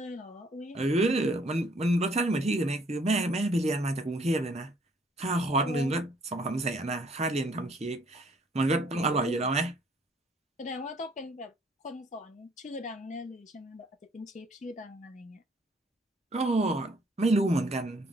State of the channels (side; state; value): both; normal; correlation 0.63